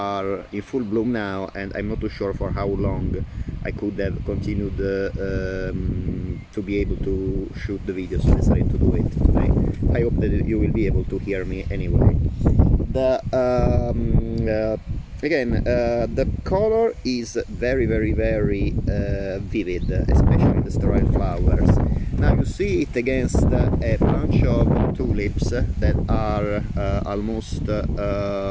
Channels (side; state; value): both; identical; correlation 1.00